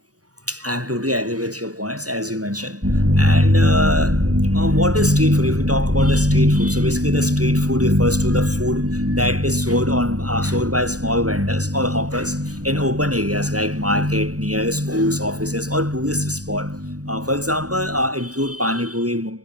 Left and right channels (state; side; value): late; left; 0.67 ms